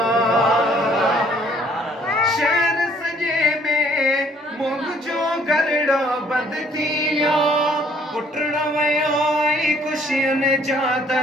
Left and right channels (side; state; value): both; normal; correlation 0.61